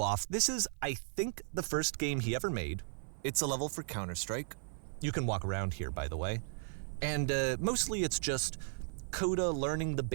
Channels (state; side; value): silent; left; 54 dB below the other